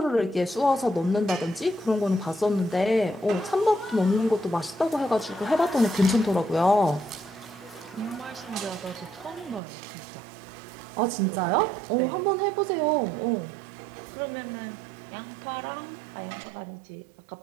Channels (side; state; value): left; drops out; at 9.6 s